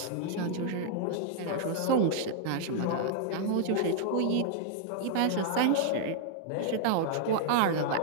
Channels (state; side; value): different; both; correlation 0.00